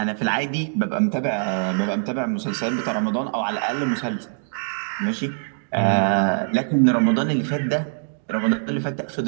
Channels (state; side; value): silent; left; digital silence